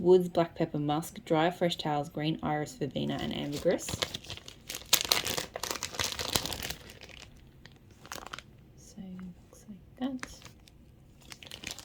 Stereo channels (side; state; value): both; identical; correlation 1.00